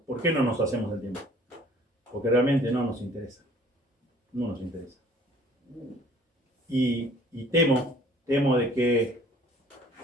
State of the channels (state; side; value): normal; both; correlation 0.54